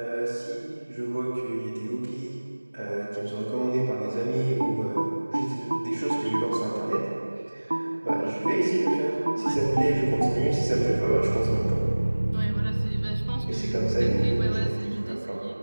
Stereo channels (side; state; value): both; inverted; correlation -1.00